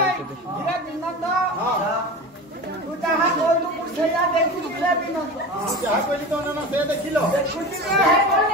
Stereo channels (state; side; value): normal; both; correlation 0.30